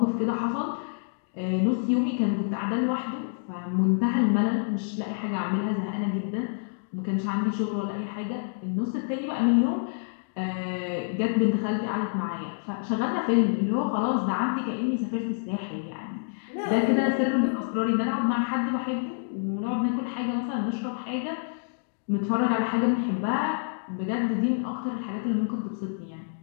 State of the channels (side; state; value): right; silent; digital silence